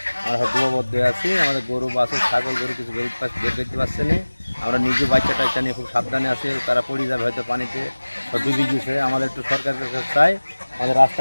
আমরা সব ডুবাবদ্ধ আছি। আমাদের গরু বাছুর ছাগল গরু কিছু বের করতে পারছে না। আমরা নিজে বাচ্চা টাচ্চা নিয়ে খুব সাবধানে আছি, তারা পড়ে যাবে হয়তো পানিতে, সব ডুবে গেছে। আমাদের একটু সরকারের কাছে চাই আমাদের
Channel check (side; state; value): both; inverted; correlation -1.00